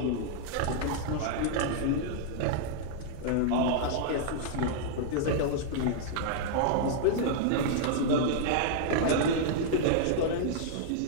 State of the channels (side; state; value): both; different; correlation -0.01